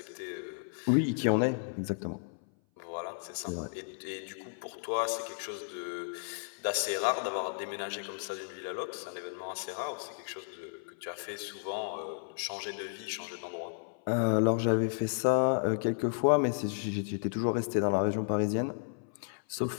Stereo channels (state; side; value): silent; right; 56 dB below the other